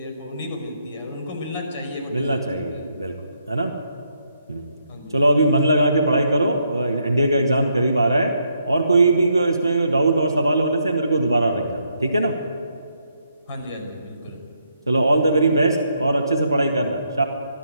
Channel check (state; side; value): inverted; both; correlation -0.76